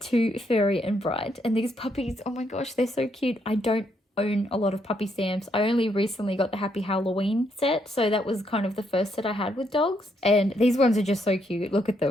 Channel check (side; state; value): both; normal; correlation 0.75